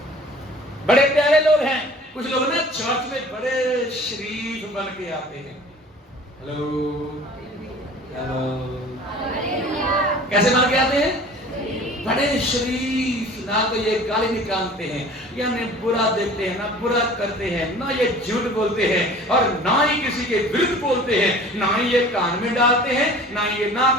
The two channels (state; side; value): normal; both; correlation 0.45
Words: बड़े प्यारे लोग हैं। कुछ लोग ना चर्च में बड़े शरीफ बन के आते हैं। हेलो हेलो, कैसे बन के आते हैं? बड़े शरीफ, ना तो ये गाली निकालते हैं, या ना बुरा देखते हैं, ना बुरा करते हैं, ना ये झूठ बोलते हैं, और ना ही किसी के विरुद्ध बोलते हैं, ना ही ये कान में डालते हैं, ना ही ये